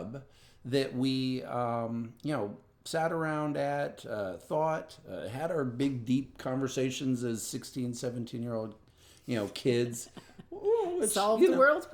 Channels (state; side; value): identical; both; correlation 1.00